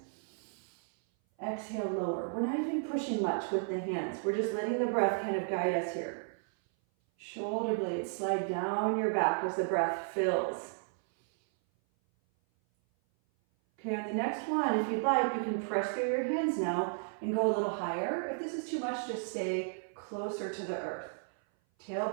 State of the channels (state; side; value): silent; left; 55 dB below the other